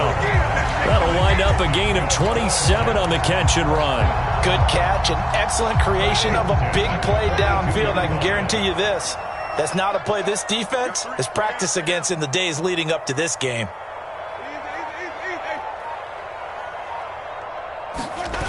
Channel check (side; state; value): both; identical; correlation 1.00